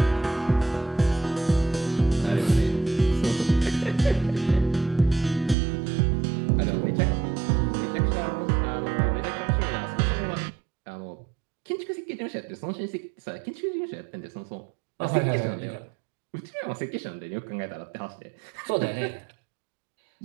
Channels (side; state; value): left; drops out; at 5.6 s